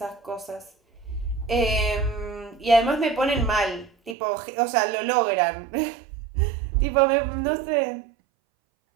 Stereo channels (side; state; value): left; drops out; at 4.2 s